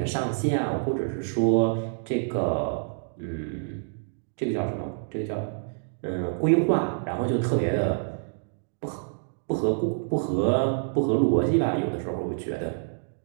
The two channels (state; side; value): silent; left; digital silence